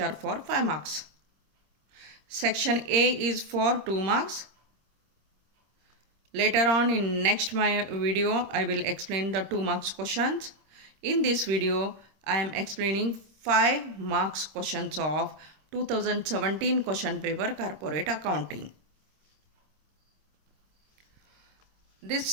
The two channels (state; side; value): late; left; 26 ms